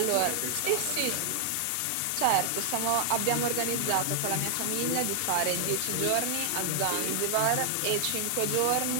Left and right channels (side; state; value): both; different; correlation 0.00